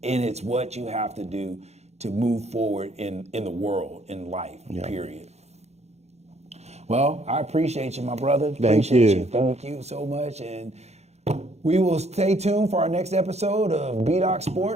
and it's what you have to do to move forward in the world, in life, period. Well, I appreciate you, my brother. Appreciate you. Thank you so much. And we will stay tuned for our next episode of Bdoc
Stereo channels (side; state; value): left; late; 0.31 ms